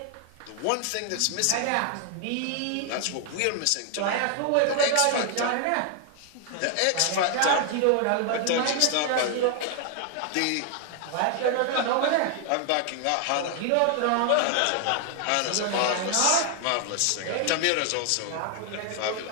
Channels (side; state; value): both; different; correlation 0.00